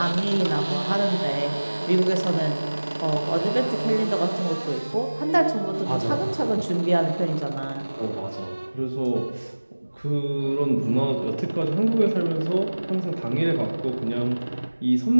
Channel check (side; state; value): both; inverted; correlation -1.00